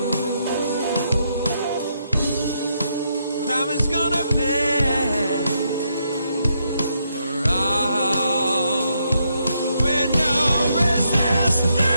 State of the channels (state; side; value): inverted; both; correlation -0.78